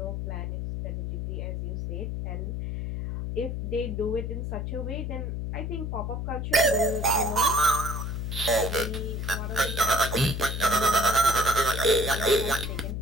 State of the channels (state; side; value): noise; left; hum, 3 dB below the sound